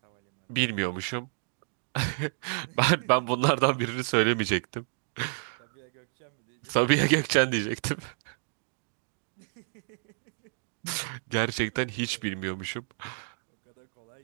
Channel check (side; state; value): left; silent; digital silence